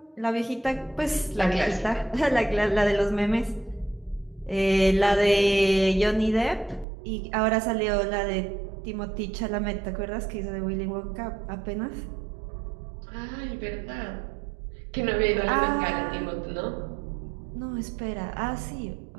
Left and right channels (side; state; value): left; drops out; at 6.9 s